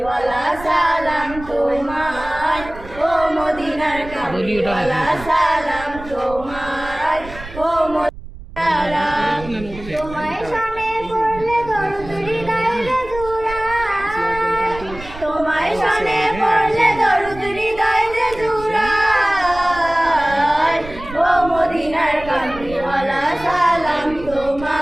সালাম তোমার, ও মদিনার কামলিওয়ালা সালাম তোমার, ও মদিনারা তোমায় শানে পড়লে দরুদ হৃদয়ে জুড়ায়, তোমায় শানে পড়লে দরুদ হৃদয়ে জুড়ায়, ও মদিনার কামলিওয়ালা সালাম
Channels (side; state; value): right; noise; rumble, 15 dB below the sound